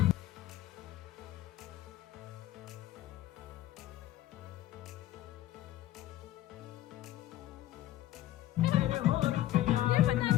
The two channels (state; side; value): quieter; right; 14.0 dB